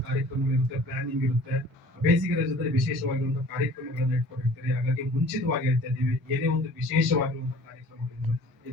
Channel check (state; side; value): normal; both; correlation 0.48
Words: ಕಾರ್ಯಕ್ರಮಗಳಿರುತ್ತೆ, ಪ್ಲಾನಿಂಗ್ ಇರುತ್ತೆ, ಬೇಸಿಗೆ ರಜದಲ್ಲಿ ವಿಶೇಷವಾಗಿರುವಂತಹ ಕಾರ್ಯಕ್ರಮಗಳನ್ನ ಇಟ್ಕೊಂಡಿರ್ತೀರಿ. ಹಾಗಾಗಿ ಮುಂಚಿತವಾಗಿ ಹೇಳ್ತಾ ಇದ್ದೀವಿ, ಏನೇ ಒಂದು ವಿಶೇಷವಾಗಿರುವಂತಹ ಕಾರ್ಯಕ್ರಮಗಳು